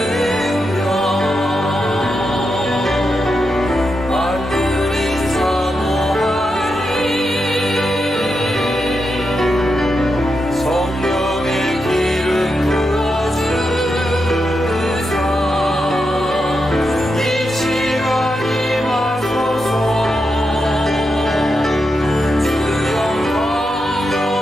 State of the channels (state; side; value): normal; both; correlation 0.86